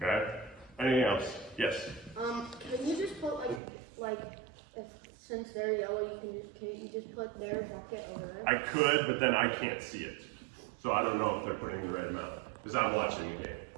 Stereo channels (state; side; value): drops out; left; at 3.6 s